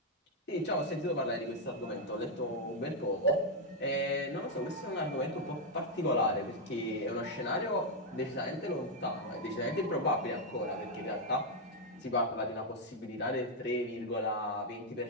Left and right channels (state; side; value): normal; both; correlation 0.00